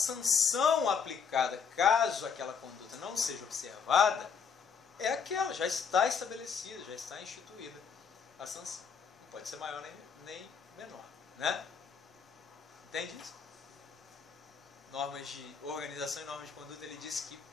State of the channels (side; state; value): right; quieter; 6.4 dB